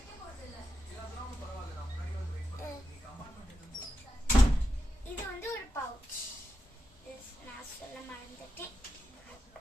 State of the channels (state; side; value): normal; both; correlation 0.88